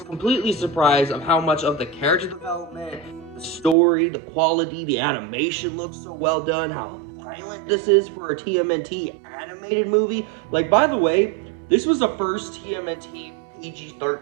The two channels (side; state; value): left; drops out; at 3.8 s